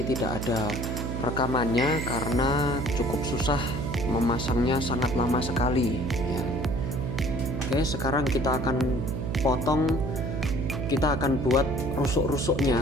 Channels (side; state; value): right; noise; hum, 3 dB below the sound